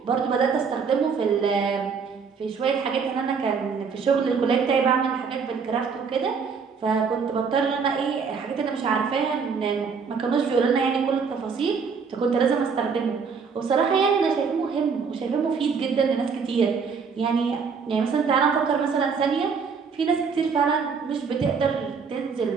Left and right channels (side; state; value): left; quieter; 5.7 dB